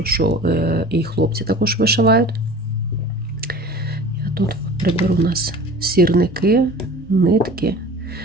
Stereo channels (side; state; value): both; normal; correlation 0.41